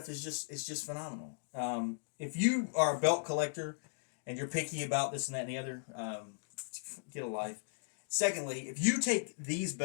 is just phenomenal. If you are a belt collector and you're picky about this and that and the other, get a life. Secondly, if you take these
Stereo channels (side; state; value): right; silent; digital silence